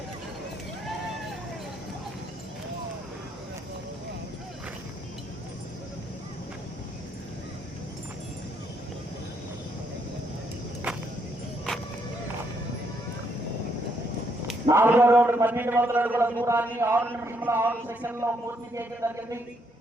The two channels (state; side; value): normal; both; correlation 0.73